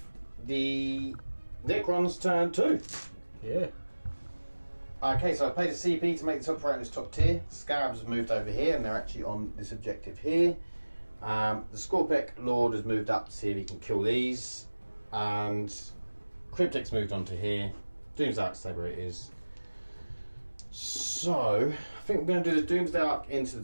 the Necrons turn 2. Yeah. Okay, so I paid a CP to make the top right in this top tier. Scarabs have moved over here and they're actually on this objective here. The Scorpec Lord has moved up to see if he can kill these. And Cryptic's moved on to here. Doomsday Arc, stay where it is. So, I think we're going to do the Doomsday Arc into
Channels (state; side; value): inverted; both; correlation -1.00